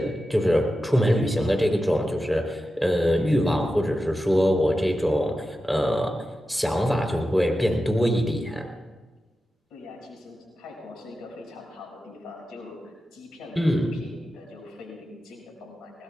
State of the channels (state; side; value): normal; both; correlation 0.92